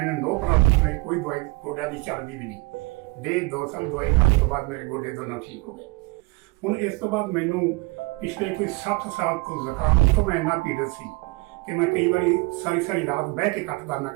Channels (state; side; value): quieter; left; 25.9 dB